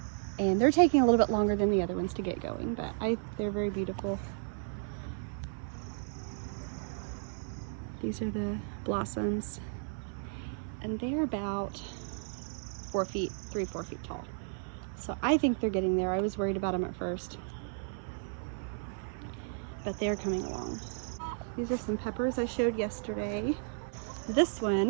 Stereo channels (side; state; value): left; silent; digital silence